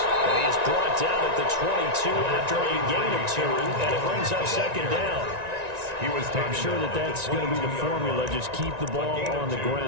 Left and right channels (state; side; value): late; left; 1.9 ms